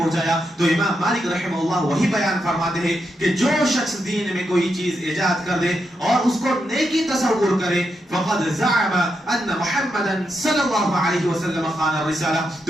تو امام مالک رحمہ اللہ وہی بیان فرماتے ہیں کہ جو شخص دین میں کوئی چیز ایجاد کر دے اور اس کو نیکی تصور کرے، فقد زعم ان محمدا صلی اللہ علیہ وسلم خان الرسالہ،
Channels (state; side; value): normal; both; correlation 0.84